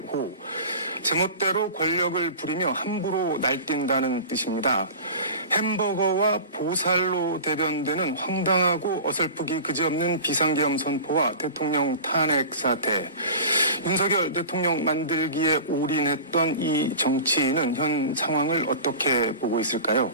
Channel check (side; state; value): both; inverted; correlation -0.35